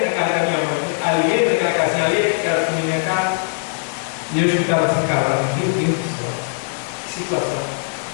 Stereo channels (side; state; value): right; silent; digital silence